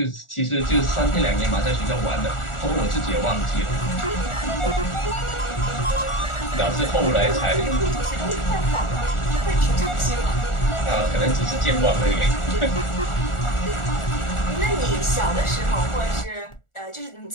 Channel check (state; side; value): late; right; 1.4 ms